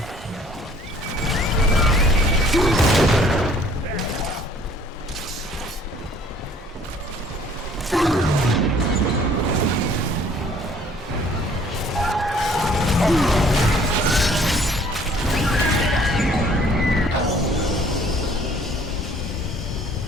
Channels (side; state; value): both; normal; correlation 0.57